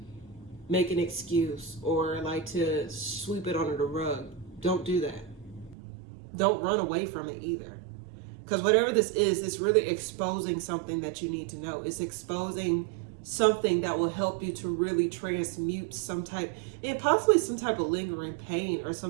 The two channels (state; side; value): drops out; left; at 5.8 s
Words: make an excuse or like to sweep it under the rug. Don't do that. Don't run away from it either. Because whatever this is, it's really exposing something that you need to know. It's exposing something that will help you to really transmute some type, and possibly some type of lingering pain, or